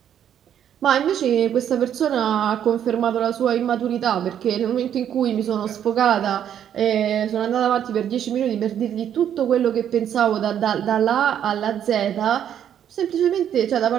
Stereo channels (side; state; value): left; quieter; 9.6 dB